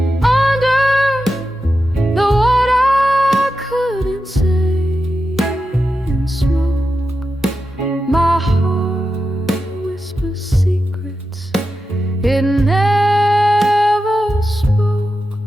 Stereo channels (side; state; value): both; normal; correlation 0.90